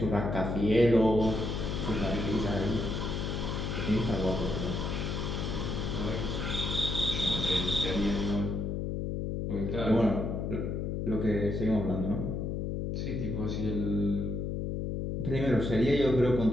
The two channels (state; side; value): noise; left; hum, 2 dB below the sound